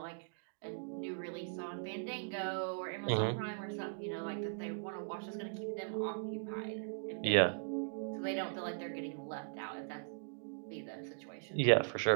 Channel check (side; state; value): left; silent; digital silence